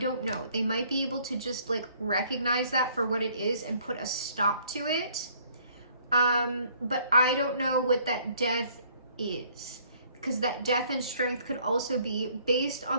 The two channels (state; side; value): inverted; both; correlation -0.61